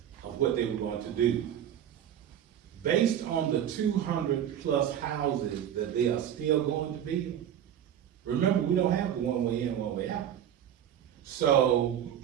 of what they were going to do, based on the 200+ houses that they are still going to build, remember, we don't have a one-way in, one-way out. So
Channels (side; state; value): left; quieter; 10.0 dB